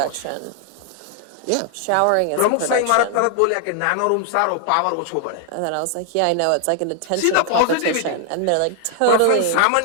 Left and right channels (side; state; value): both; different; correlation 0.00